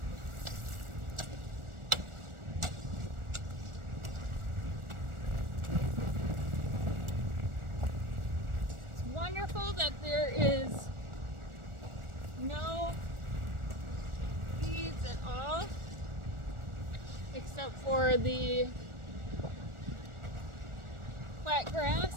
It's wonderful that there is no weeds at all, except for the quackgrass.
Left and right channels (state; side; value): late; left; 1.4 ms